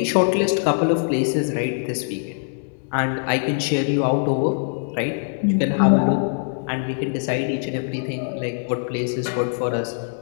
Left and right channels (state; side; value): silent; right; 64 dB below the other